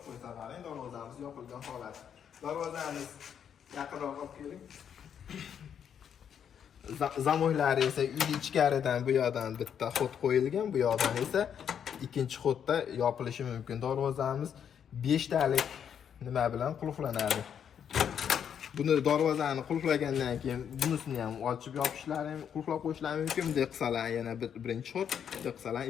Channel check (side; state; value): right; quieter; 8.3 dB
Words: qo'ysalaring, darvozamiz yopilgan holat. Darvozamiz yaqinroq olib keling. Zamoklari esa uy ichkaridan bu yoqdan bitta xod qo'yilgan, bu yoqdan esa ikkinchi xodda yopilishi mumkin. Darvozamiz 5 talik nima bilan qulflanadi. Buni darvozani qulflagandan keyin bunisini ham ochib yopishlari, qulflab qo'yishlari mumkin. Bunday qilsalar yana birinchi xod, bunday qilsalar